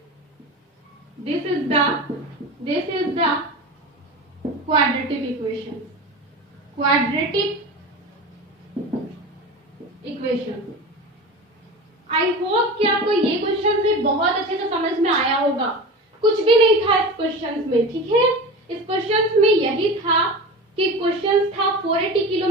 this is the quadratic equation, I hope कि आपको ये क्वेश्चन से बहुत अच्छे से समझ में आया होगा। कुछ भी नहीं था इस क्वेश्चन में, ठीक है। इस क्वेश्चन में यही था कि क्वेश्चन था 480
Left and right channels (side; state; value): both; normal; correlation 0.30